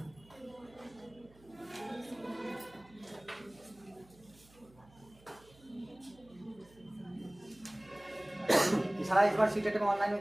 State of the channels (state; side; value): noise; right; hum, 26 dB below the sound